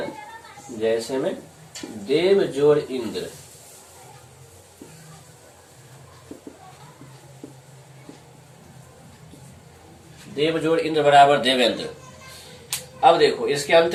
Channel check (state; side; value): identical; both; correlation 1.00